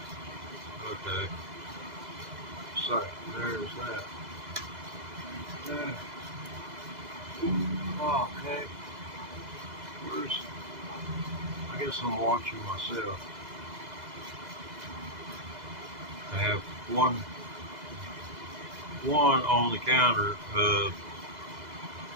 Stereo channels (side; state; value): left; late; 2.0 ms